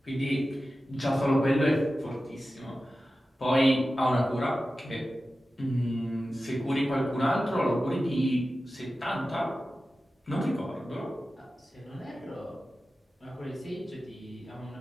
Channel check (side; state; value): both; normal; correlation 0.94